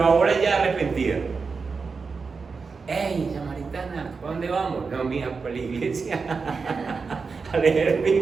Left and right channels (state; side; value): quieter; left; 4.9 dB